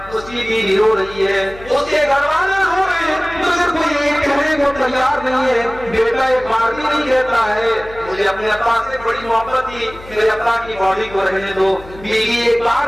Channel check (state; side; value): noise; left; hum, 18 dB below the sound